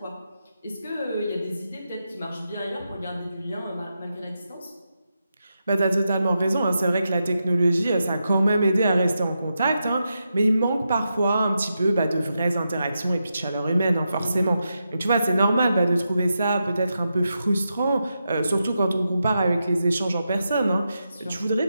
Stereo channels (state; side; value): inverted; both; correlation -0.87